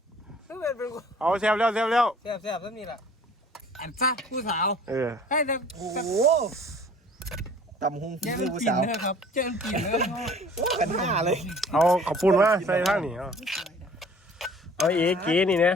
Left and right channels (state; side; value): normal; both; correlation 0.50